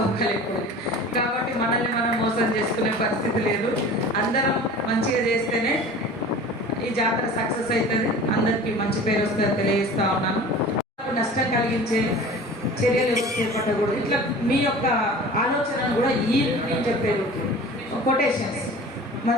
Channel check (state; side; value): normal; both; correlation 0.40